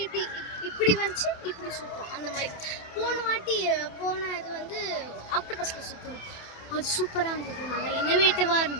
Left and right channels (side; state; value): right; late; 27 ms